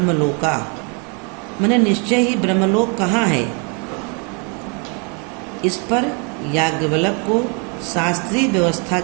मैंने निश्चय ही ब्रह्मलोक कहाँ है, इस पर याज्ञवल्क्य को शास्त्रीय व्यवस्था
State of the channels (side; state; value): left; quieter; 35.2 dB